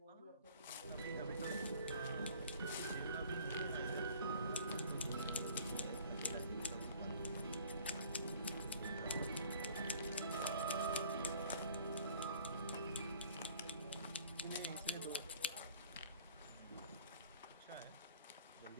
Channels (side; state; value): both; inverted; correlation -0.53